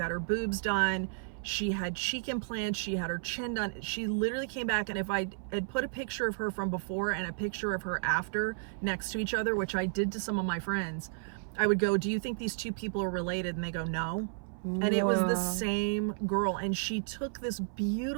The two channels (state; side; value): silent; left; 56 dB below the other